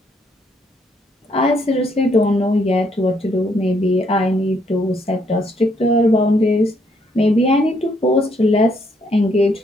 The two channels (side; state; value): both; normal; correlation 0.71